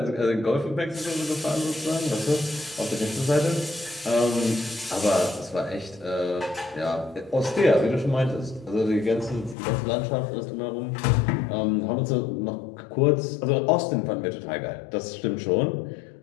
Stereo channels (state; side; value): drops out; right; at 9.6 s